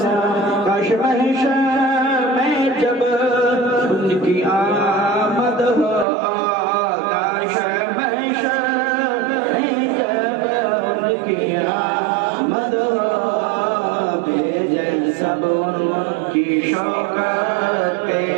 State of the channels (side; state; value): left; drops out; at 6.1 s